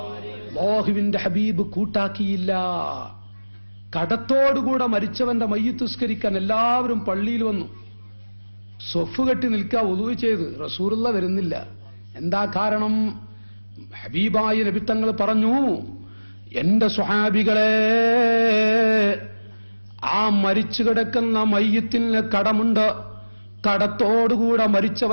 അല്ലാഹുവിന്റെ ഹബീബ് കൂട്ടാക്കിയില്ല. കടത്തോടുകൂടെ മരിച്ചവന്റെ മയ്യിത്ത് നിസ്കരിക്കാൻ എല്ലാവരും പള്ളിയിൽ വന്നു. സ്വഫ് കെട്ടി നിൽക്കുക, വുളൂ ചെയ്ത്. റസൂലുള്ള വരുന്നില്ല. എന്താ കാരണം? ഹബീബായ നബി തങ്ങൾ പറഞ്ഞു, എന്റെ സ്വഹാബികളെ, ആ മരിച്ചു കിടക്കുന്ന മയ്യിത്തിന് കടമുണ്ട്. കടത്തോടുകൂടെ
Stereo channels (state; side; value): inverted; both; correlation -1.00